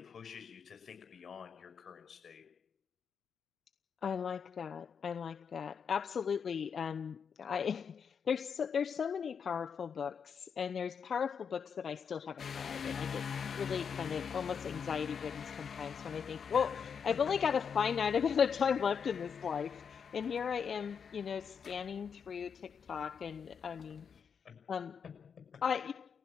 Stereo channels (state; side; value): quieter; right; 6.7 dB